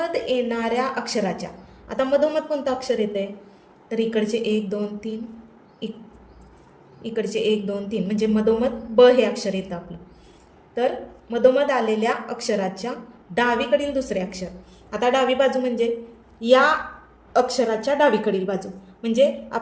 येणाऱ्या अक्षराच्या, आता मधोमध कोणतं अक्षर येते? तर इकडचे 1, 2, 3, इकडचे 1, 2, 3 म्हणजे मधोमध ब हे अक्षर येतं आपलं. तर मधोमध आलेल्या अक्षराच्या डावीकडील दुसरे अक्षर. आता डावी बाजू म्हणजे या अक्षराच्या डावीकडील बाजू, म्हणजे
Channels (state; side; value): identical; both; correlation 1.00